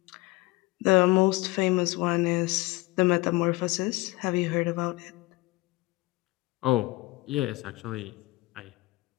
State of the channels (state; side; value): quieter; right; 21.4 dB